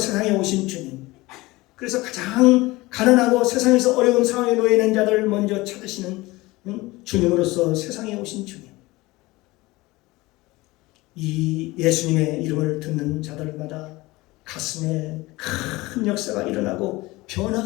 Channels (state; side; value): quieter; right; 20.9 dB